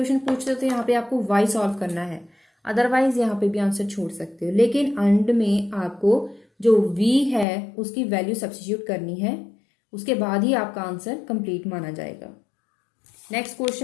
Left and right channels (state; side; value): drops out; right; at 7.5 s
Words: पूछते हो तो यहाँ पे आपको y सॉल्व करना है, अदरवाइज यहाँ पे भी आंसर छोड़ सकते हो। लेकिन एंड में आपको जो v है उसकी वैल्यू सब्स्टिट्यूट करनी है, उसके बाद ही आपका आंसर कंप्लीट माना जाएगा। Next